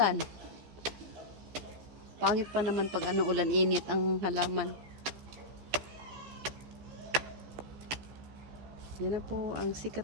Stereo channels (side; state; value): left; late; 14 ms